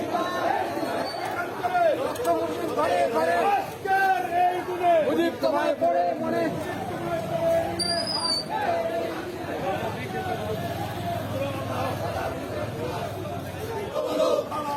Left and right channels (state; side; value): identical; both; correlation 1.00